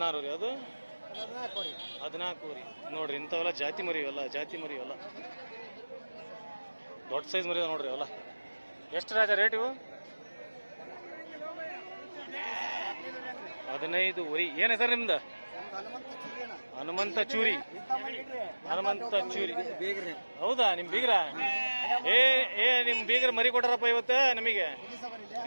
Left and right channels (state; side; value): inverted; both; correlation -1.00